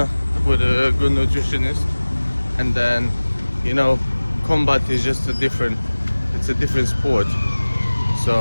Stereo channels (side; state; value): both; inverted; correlation -1.00